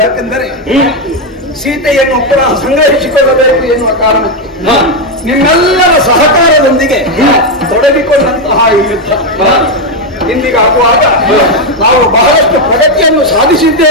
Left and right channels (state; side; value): normal; both; correlation 0.04